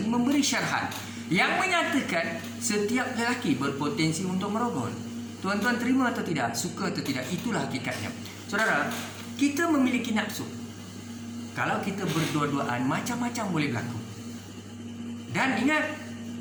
ini memberi syarahan yang menyatakan setiap lelaki berpotensi untuk merogol. Tuan-tuan terima atau tidak, suka atau tidak, itulah hakikatnya. Saudara, kita memiliki nafsu. Kalau kita berdua-duaan, macam-macam boleh berlaku. Dan ingat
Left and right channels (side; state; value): both; identical; correlation 1.00